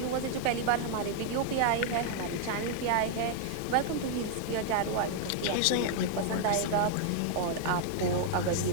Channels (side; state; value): both; different; correlation 0.00